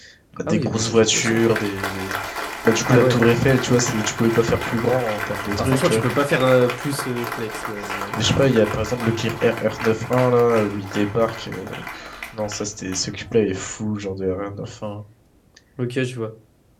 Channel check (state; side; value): identical; both; correlation 1.00